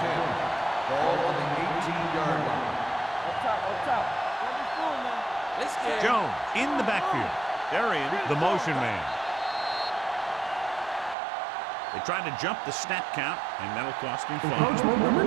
10. Ball on the 18-yard line. Up top. Let me through, man. Let's get Jones in the backfield. They're in the motion man. They tried to jump the snap count, and that'll cost him 5. Encroachment number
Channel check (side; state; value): left; drops out; at 11.2 s